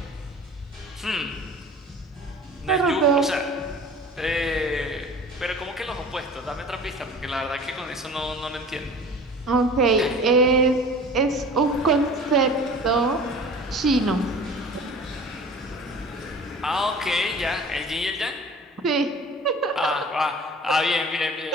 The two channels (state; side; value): normal; both; correlation 0.42